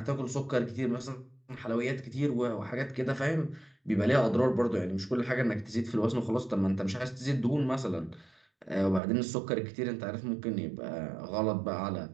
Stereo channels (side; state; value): left; drops out; at 9.0 s